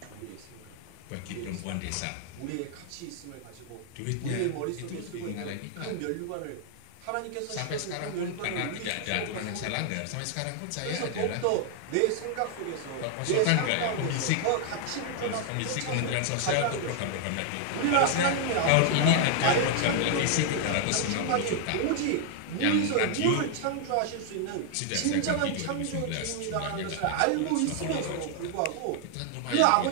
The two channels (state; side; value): different; both; correlation 0.00